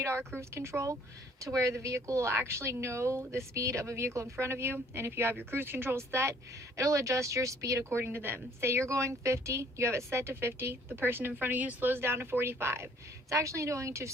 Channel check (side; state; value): both; normal; correlation 0.59